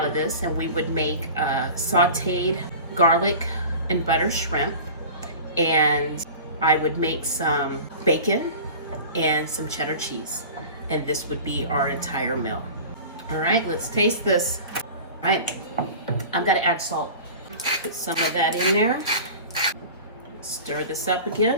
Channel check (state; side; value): inverted; both; correlation -0.37